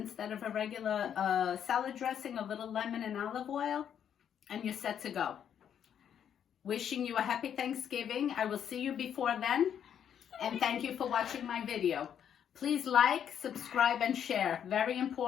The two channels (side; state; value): right; quieter; 8.9 dB